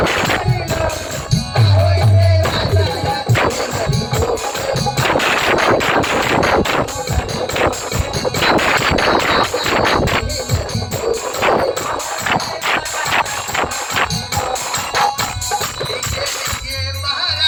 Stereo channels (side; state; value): both; identical; correlation 1.00